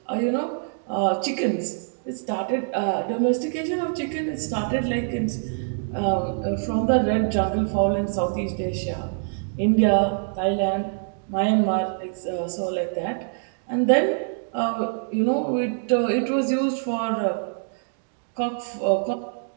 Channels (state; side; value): silent; left; digital silence